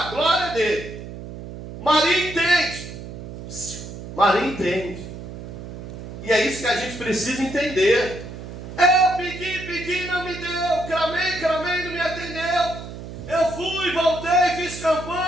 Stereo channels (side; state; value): right; noise; hum, 11 dB below the sound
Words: glória dele. Maria entende. Maria entende. E é isso que a gente precisa entender. Eu pedi, não me deu. Clamei, não me atendeu. Eu fui, voltei, fiz